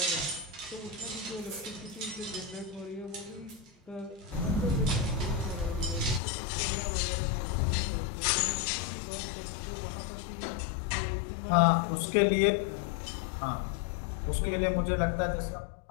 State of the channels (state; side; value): drops out; right; at 6.2 s